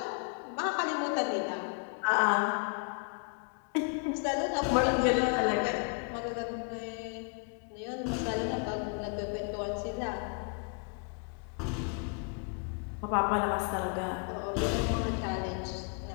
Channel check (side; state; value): right; quieter; 39.5 dB